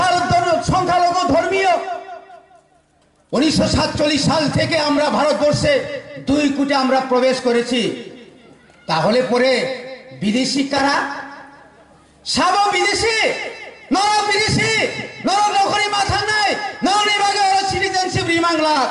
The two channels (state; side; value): identical; both; correlation 1.00